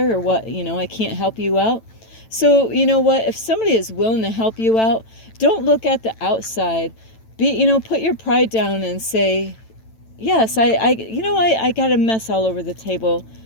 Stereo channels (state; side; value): late; right; 9.0 ms